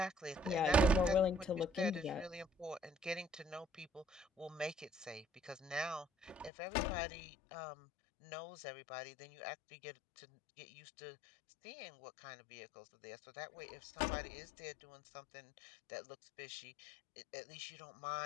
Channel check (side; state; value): right; drops out; at 6.5 s